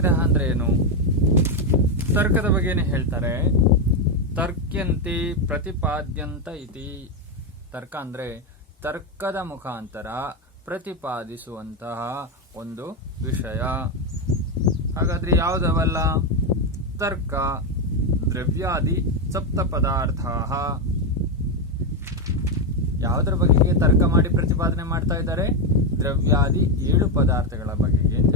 ಅಂದ್ರೆ ಏನು? ತರ್ಕದ ಬಗ್ಗೆನೇ ಹೇಳ್ತಾರೆ. ತರ್ಕ್ಯಂತೆ ಪ್ರತಿಪಾದ್ಯಂತ ಇತಿ. ತರ್ಕ ಅಂದ್ರೆ ತರ್ಕದ ಮುಖಾಂತರ ಪ್ರತಿಪಾದಿಸುವಂತಹ ಒಂದು ವಿಷಯ. ಹಾಗಾದ್ರೆ ಯಾವುದವಲ್ಲ? ತರ್ಕ, ದ್ರವ್ಯಾದಿ ಸಪ್ತ ಪದಾರ್ಥ. ಯಾವುದರ ಬಗೆಗೆ ತರ್ಕ ಮಾಡಿ ಪ್ರತಿಪಾದನೆ ಮಾಡ್ತಾ ಇದ್ದಾರೆ? ದ್ರವ್ಯಾದಿ 7 ಪದಾರ್ಥಗಳ ಬಗೆಗೆ ಅಂತ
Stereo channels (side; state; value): both; normal; correlation 0.07